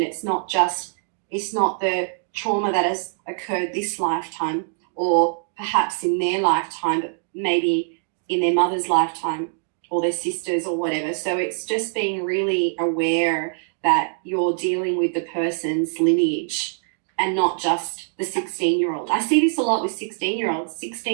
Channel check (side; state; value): left; silent; digital silence